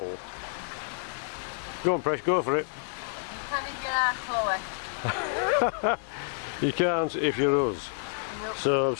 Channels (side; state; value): right; silent; digital silence